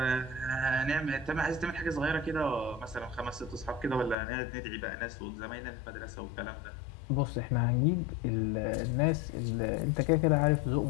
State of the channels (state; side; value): drops out; right; at 4.2 s